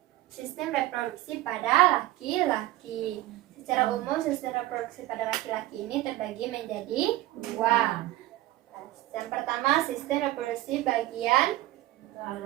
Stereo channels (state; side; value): quieter; left; 16.5 dB